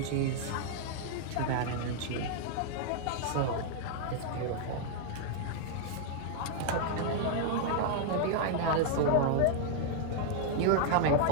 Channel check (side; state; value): both; different; correlation -0.01